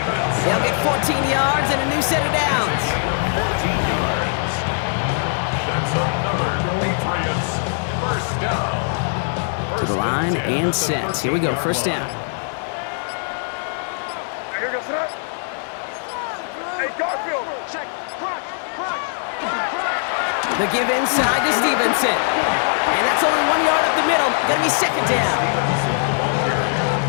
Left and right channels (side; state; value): right; silent; 64 dB below the other